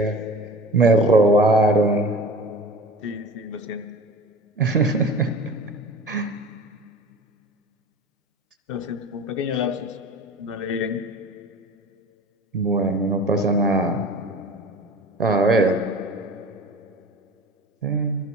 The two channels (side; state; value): both; normal; correlation 0.39